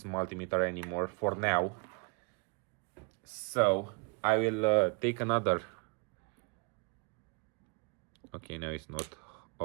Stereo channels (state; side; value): quieter; left; 35.3 dB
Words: multimeter anymore for now. So I will take another. Okay, now it's not.